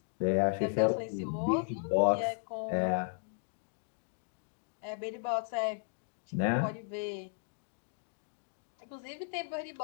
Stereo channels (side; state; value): right; silent; digital silence